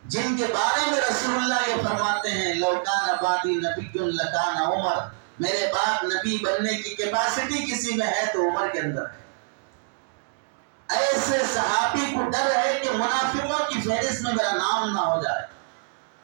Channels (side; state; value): left; silent; digital silence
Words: جن کے بارے میں رسول اللہ یہ فرماتے ہیں لو کان بعدی نبی لکان عمر، میرے بعد نبی بننے کی کیپیسٹی کسی میں ہے تو عمر کے اندر ہے. ایسے صحابی کو ڈر ہے کہ منافقوں کی فہرست میں میرا نام نہ ہو جائے.